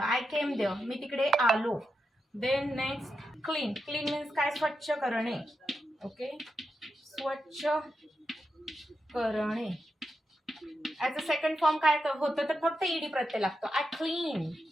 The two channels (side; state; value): both; normal; correlation 0.87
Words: आय केम देअर, मी तिकडे आलो. Then next clean. Clean means काय? स्वच्छ करणे. ओके. स्वच्छ करणे. ॲज अ सेकंड फॉर्म काय होतं तर फक्त ईडी प्रत्यय लागतो. I clean,